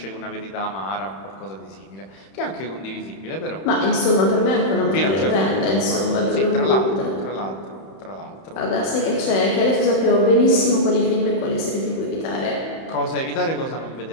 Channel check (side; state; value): right; late; 31 ms